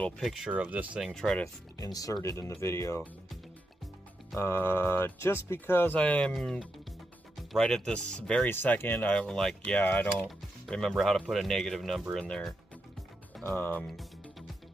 picture of this thing, try to insert it in the video, just because I am right at this very second, I'm like, yeah, I don't remember how to put a negative number in there, but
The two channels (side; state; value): both; normal; correlation 0.85